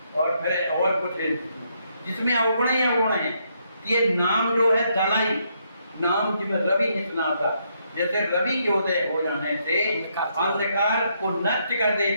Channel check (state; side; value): inverted; both; correlation -0.75